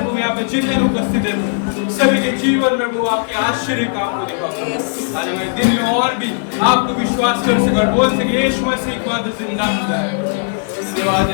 वो यहाँ पे जितने लोग उपस्थित है सभी के जीवन में वो आपके आश्चर्य काम को दिखाओ। आज हमारे दिन में और भी आपको विश्वास कर सके और बोल सके यीशु मसीह एक बार जिंदा खुदा है। धन्यवाद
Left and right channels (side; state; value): right; silent; 68 dB below the other